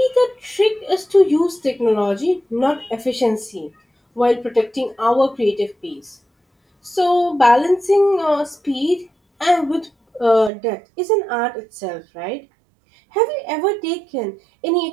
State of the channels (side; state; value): left; drops out; at 10.5 s